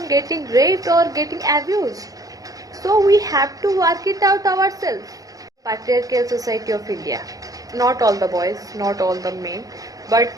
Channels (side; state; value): left; late; 0.17 ms